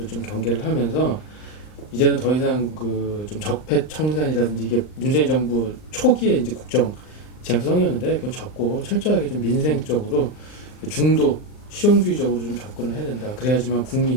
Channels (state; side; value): late; right; 39 ms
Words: 좀 경계를 하면서 이제는 더 이상 그 좀 적폐 청산이라든지 이게 문재인 정부 초기에 이제 국정 지향성이었는데 그건 접고 철저하게 좀 민생적으로 중도 실용주의적으로 좀 접근을 해야 된다. 그래야지만